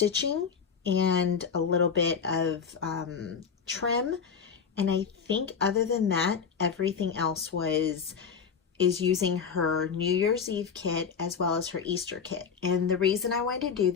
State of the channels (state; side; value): quieter; right; 6.4 dB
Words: and a little bit of trim, and I think other than that everything else is using her New Year's Eve kit as well as her Easter kit. And the reason I wanted to do